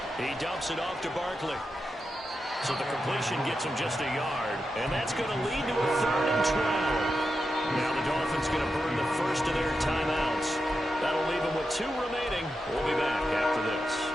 He dumps it off to Barkley. So the completion gets him just a yard, and that's going to lead to a 3rd and 12. Now the Dolphins going to burn the first of their timeouts. That'll leave them with 2 remaining. We'll be back after this.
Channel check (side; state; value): both; normal; correlation 0.88